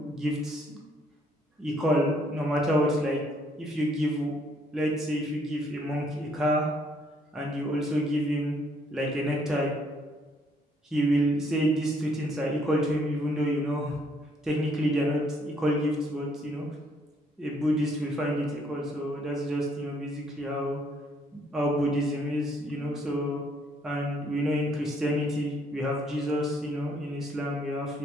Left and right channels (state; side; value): normal; both; correlation 0.67